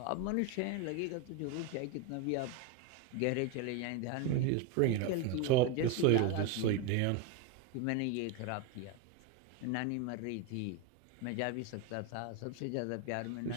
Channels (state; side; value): different; both; correlation 0.02